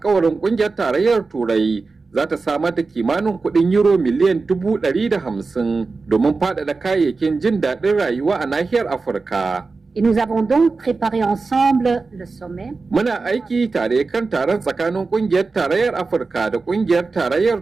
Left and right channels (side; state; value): left; quieter; 4.1 dB